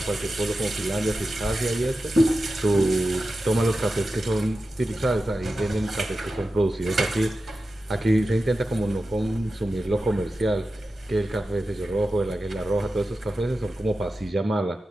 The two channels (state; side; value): normal; both; correlation 0.93